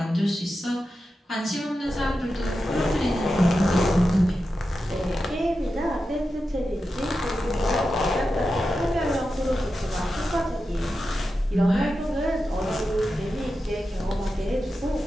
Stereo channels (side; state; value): both; normal; correlation 0.90